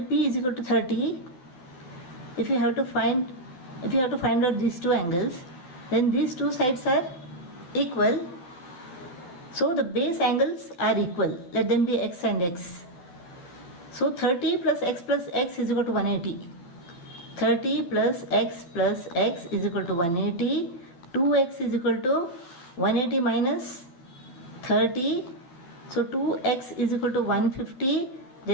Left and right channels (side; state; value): right; late; 12 ms